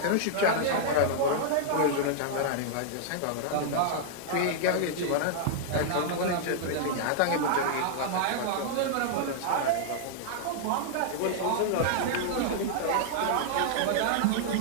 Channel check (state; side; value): different; both; correlation -0.01